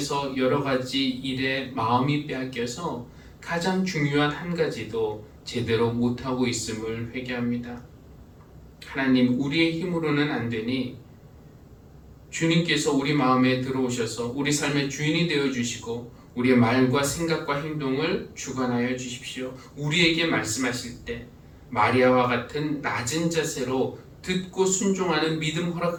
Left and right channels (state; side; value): identical; both; correlation 1.00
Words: 여러 가지 일에 마음이 빼앗겨서 가장 중요한 한 가지도 제대로 못하고 있음을 회개합니다. 하나님, 우리의 힘으로는 안 되니 주님께서 우리 마음에 들어오셔서 우리 삶의 주인이 되어 주시고 우리의 말과 생각과 행동을 주관하여 주십시오. 우리에게 말씀하실 때 마리아와 같은 낮은 자세로 듣고 순종하는 믿음